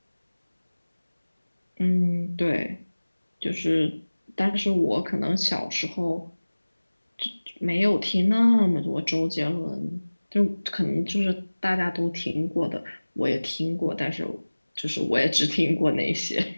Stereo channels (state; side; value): inverted; both; correlation -1.00